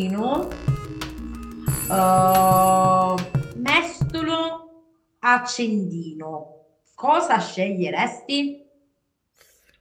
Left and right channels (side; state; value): both; identical; correlation 1.00